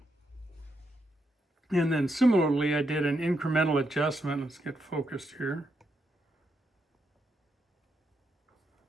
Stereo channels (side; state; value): both; normal; correlation 0.81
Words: And then similarly, I did an incremental adjustment. Let's get focused here.